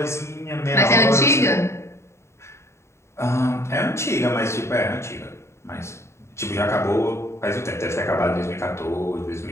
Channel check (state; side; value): late; right; 0.13 ms